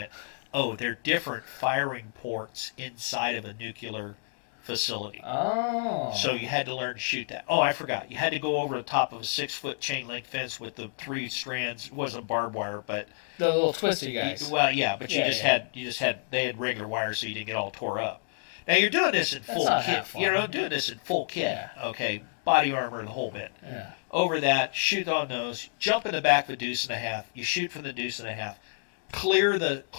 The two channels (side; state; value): right; silent; digital silence